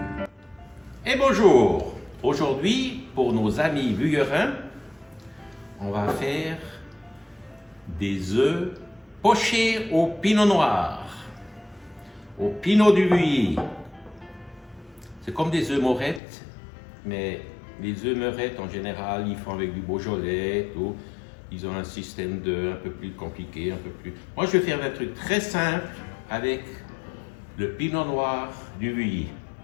Et bonjour! Aujourd'hui, pour nos amis vuillerins, on va faire des œufs pochés au pinot noir, au pinot du Vuilly. C'est comme des œufs morettes, mais les œufs morettes en général, ils font avec du Beaujolais, tout. Ils ont un système un peu plus compliqué, un peu plus... Moi, je vais faire un truc très simple avec le pinot noir du Vuilly.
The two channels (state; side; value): drops out; right; at 16.2 s